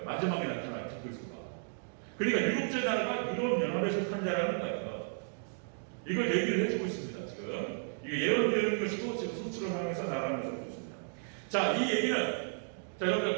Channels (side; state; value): left; silent; digital silence